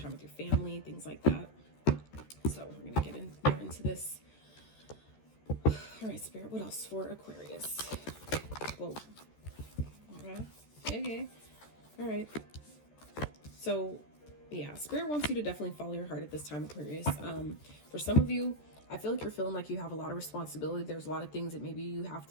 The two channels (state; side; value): late; right; 14 ms